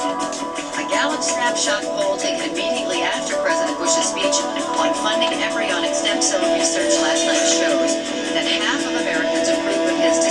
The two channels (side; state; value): both; identical; correlation 1.00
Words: A Gallup snapshot poll taken immediately after President Bush's speech on funding embryonic stem cell research last night shows that half of Americans approve of his